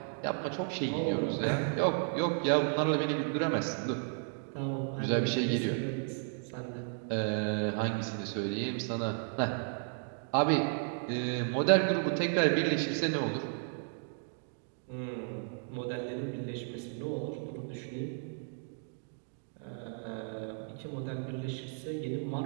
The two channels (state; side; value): silent; left; 55 dB below the other